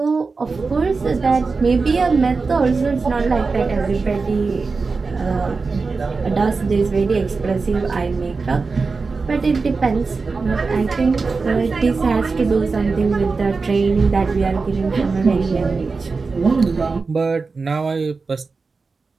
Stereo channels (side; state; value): left; quieter; 4.3 dB